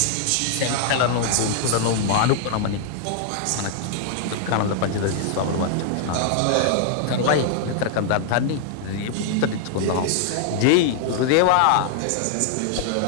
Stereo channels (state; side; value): different; both; correlation 0.00